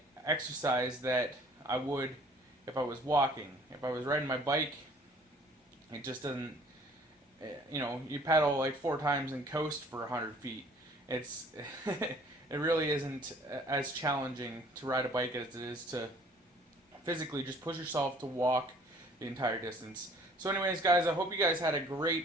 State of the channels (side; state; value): both; normal; correlation 0.55